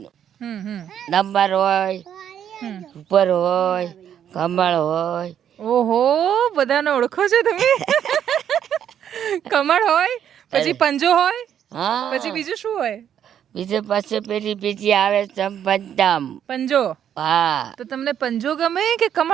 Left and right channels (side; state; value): left; quieter; 9.5 dB